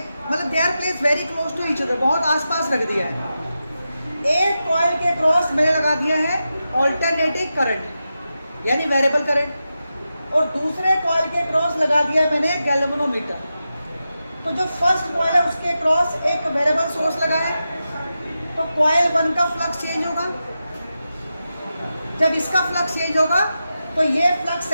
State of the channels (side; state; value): both; inverted; correlation -0.90